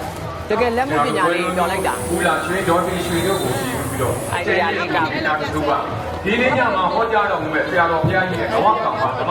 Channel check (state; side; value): identical; both; correlation 1.00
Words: တကယ်လက်မှုပညာလေးတော်လိုက်တာ ဘူးလာရွှေတော်ရွှေတို့ကိုကြည့်ပြီးတော့တူပါဒီနေ့ညမှာဟောကြားတော်မူမဲ့ဆရာတော်ဘုရားကြီးရဲ့ဘဝကံမှာဓမ္မ